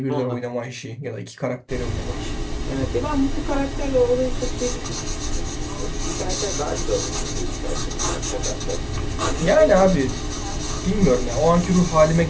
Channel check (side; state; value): both; identical; correlation 1.00